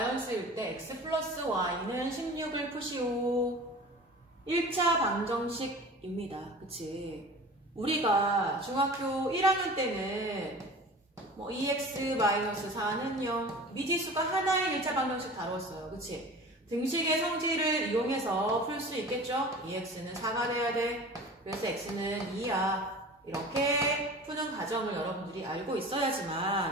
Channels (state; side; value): normal; both; correlation 0.39